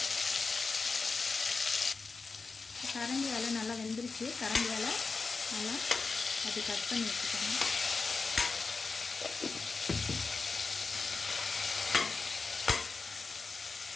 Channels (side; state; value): right; quieter; 4.4 dB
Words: கரண்டியால் நல்லா வெந்துருச்சு. கரண்டியால் நல்லா அது கட் பண்ணி வச்சுக்கோங்க.